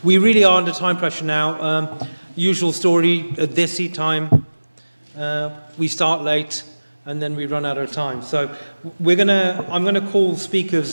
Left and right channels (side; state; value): both; inverted; correlation -1.00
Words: We really are under time pressure now. Usual story, at this time, we start late and then we run out of time. So I'm gonna call